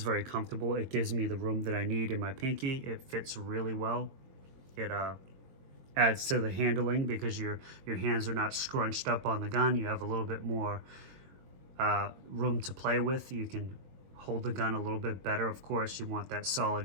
very comfortable. It gives me the room that I need in my pinky. It fits really well. It adds to the handling because your hands are not scrunched up on the gun. You have a little bit more room to play with. You can hold the gun a little bit better. Of course, you want that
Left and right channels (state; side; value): late; left; 22 ms